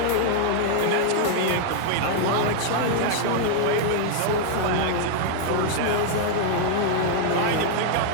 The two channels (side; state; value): both; different; correlation 0.00